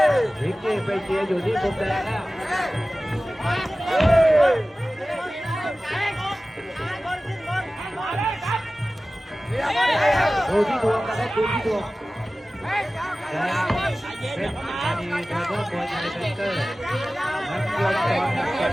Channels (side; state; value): both; normal; correlation 0.96